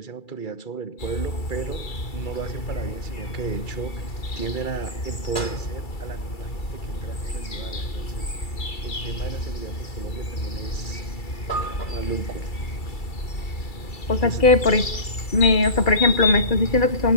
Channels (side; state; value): right; late; 2.3 ms